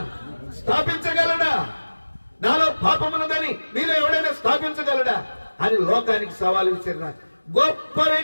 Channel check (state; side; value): inverted; both; correlation -1.00